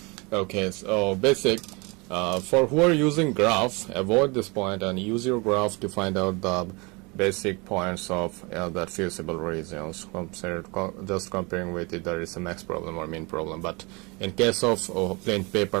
Okay, so basic, for who are using graph, avoid this point and use your graph to find out the basic points of that feasible reasons. Just comparing with it, there is a max problem or min problem. But in case of plain paper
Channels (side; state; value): left; quieter; 28.0 dB